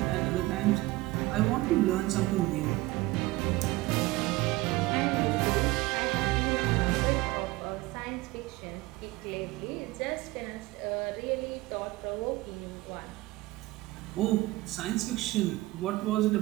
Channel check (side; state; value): left; quieter; 19.7 dB